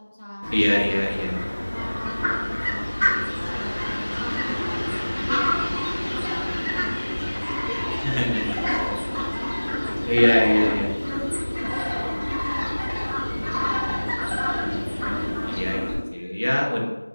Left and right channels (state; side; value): inverted; both; correlation -1.00